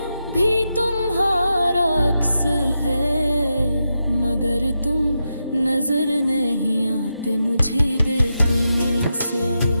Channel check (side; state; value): both; inverted; correlation -0.87